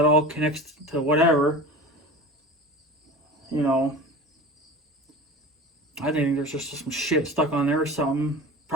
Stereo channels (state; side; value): normal; both; correlation 0.35